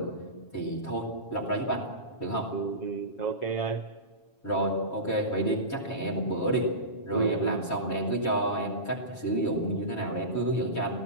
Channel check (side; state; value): right; late; 7.3 ms